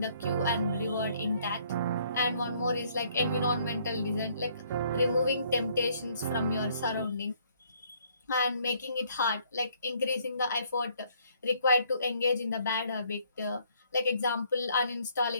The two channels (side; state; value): both; inverted; correlation -0.64